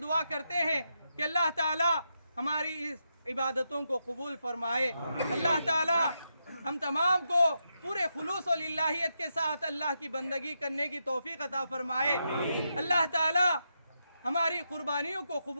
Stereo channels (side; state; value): both; inverted; correlation -0.84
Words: دعا کرتے ہیں کہ اللہ تعالی ہماری اس عبادتوں کو قبول فرمائے، اللہ تعالی ہم تمام کو پورے خلوص و للہیت کے ساتھ اللہ کی بندگی کرنے کی توفیق عطا فرمائے، اللہ تعالی ہماری قربانیوں کو